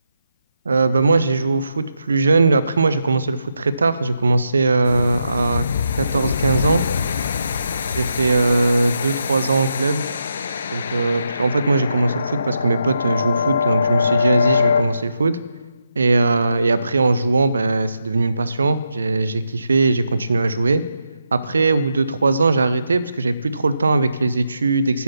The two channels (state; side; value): inverted; both; correlation -0.83